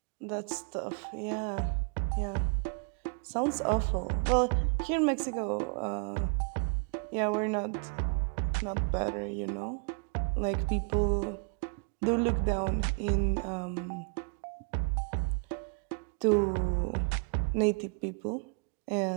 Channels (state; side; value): quieter; left; 36.2 dB